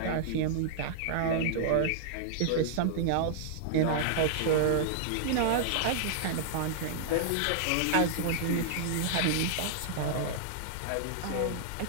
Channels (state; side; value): different; both; correlation -0.01